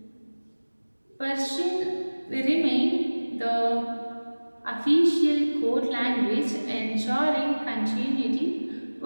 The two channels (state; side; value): inverted; both; correlation -1.00